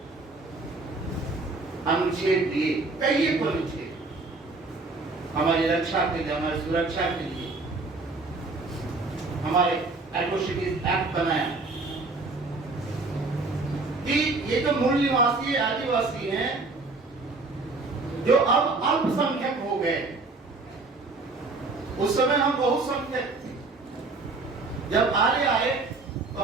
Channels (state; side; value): quieter; left; 3.6 dB